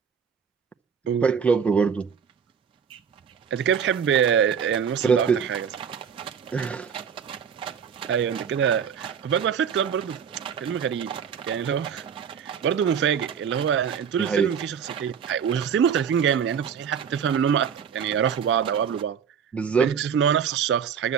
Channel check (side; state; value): left; quieter; 7.3 dB